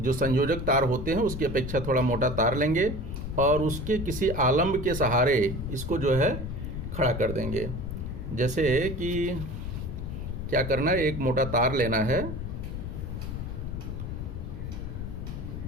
संयोजक तार होते हैं उसकी अपेक्षा थोड़ा मोटा तार लेंगे और उसके किसी आलम्ब के सहारे इसको जो है खड़ा कर देंगे। जैसे कि क्या करना है, एक मोटा तार लेना है,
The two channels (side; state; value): left; noise; rumble, 5 dB below the sound